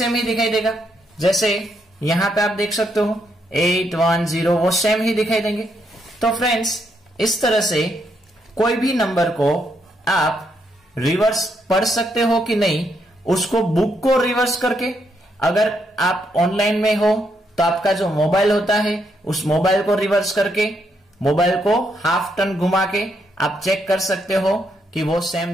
ही दिखाई देगा, जैसे यहां पे आप देख सकते हो 8 1 0, वो सेम ही दिखाई देंगे। तो फ्रेंड्स इस तरह से कोई भी नंबर को आप रिवर्स पढ़ सकते हो कि नहीं, उसको बुक को रिवर्स करके, अगर आप ऑनलाइन में हो तो आपका जो मोबाइल होता है उस मोबाइल को रिवर्स करके, मोबाइल को हाफ टर्न घुमा के आप चेक कर सकते हो कि वो सेम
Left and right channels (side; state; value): both; normal; correlation 0.77